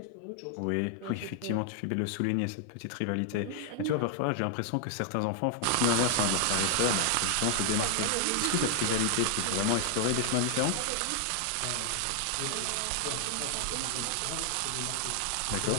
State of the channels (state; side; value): different; both; correlation 0.00